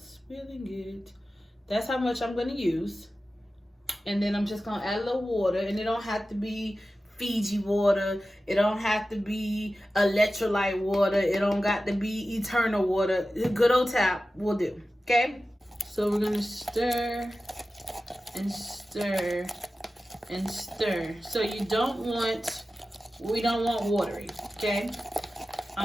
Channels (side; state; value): both; normal; correlation 0.94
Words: it. That's how much I'm going to use. And then I'm just going to add a little water. And it don't have to be Fiji water. It don't have to be electrolyte water. It don't got to be eternal water. Good old tap will do. Okay? So we're going to stir and stir and stir. So we don't want watery. Okay?